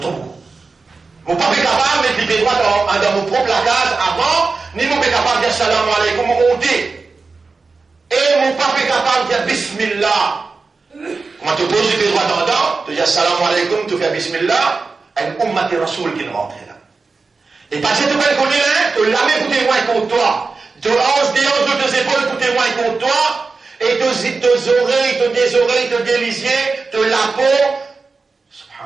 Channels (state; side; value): quieter; left; 4.2 dB